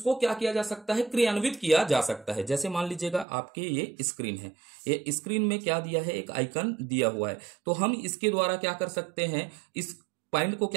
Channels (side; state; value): left; drops out; at 3.2 s